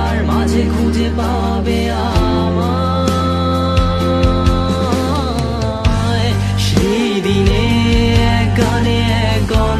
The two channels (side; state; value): both; identical; correlation 1.00